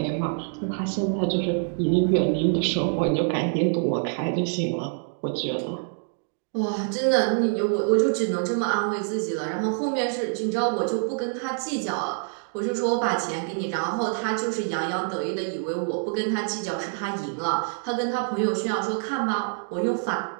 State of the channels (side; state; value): left; silent; 61 dB below the other